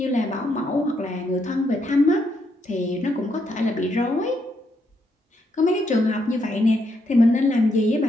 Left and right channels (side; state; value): both; normal; correlation 0.77